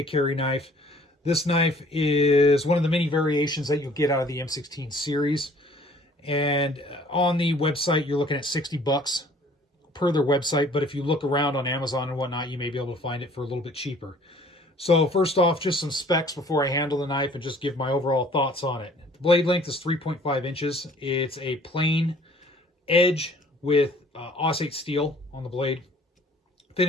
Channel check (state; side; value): normal; both; correlation 0.55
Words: carry knife. This knife is one of the many variations that you'll get out of the M16 series. And on the website, you're looking at 60 bucks per their website. But if you look around on Amazon and whatnot, you may be able to find it for a little bit cheaper. So first off, just some specs before I handle the knife and just give my overall thoughts on it. The blade length is 3.5 inches. It's a plain edge with Aussite steel on the blade.